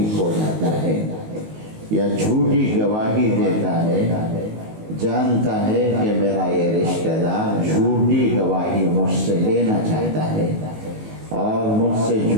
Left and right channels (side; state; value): left; late; 19 ms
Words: ہو جاتا ہے یا جھوٹی گواہی دیتا ہے، جانتا ہے کہ میرا یہ رشتہ دار جھوٹی گواہی مجھ سے لینا چاہتا ہے اور مجھ سے